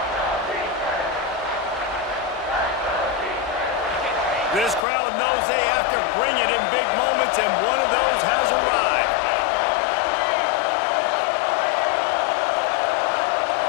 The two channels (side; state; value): right; drops out; at 4.9 s